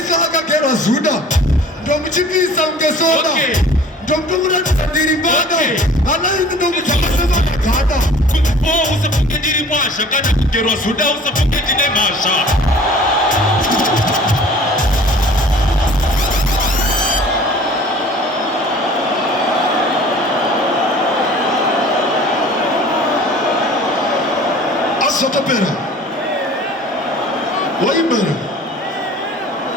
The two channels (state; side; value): normal; both; correlation 0.47